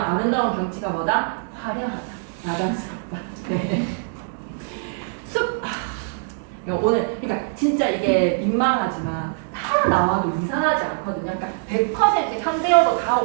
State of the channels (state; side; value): silent; left; digital silence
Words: 아름다운 경치가 뭐다? 화려하다, 야단스럽다. 네. 숲. 오늘 그러니까 진짜 이게 민망하지만 다 나와도 이상하지 않거든요. 그러니까 100% 현대어로 다